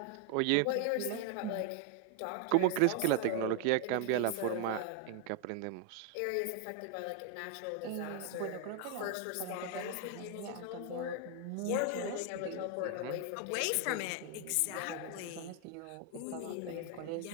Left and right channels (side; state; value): both; different; correlation 0.00